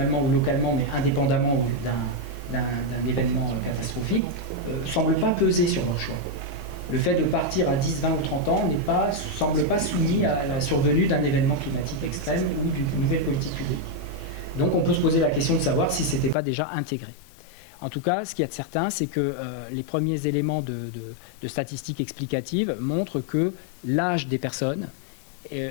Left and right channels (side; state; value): right; drops out; at 16.4 s